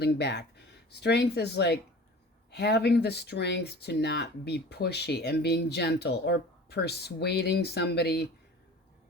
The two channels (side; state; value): both; normal; correlation 0.41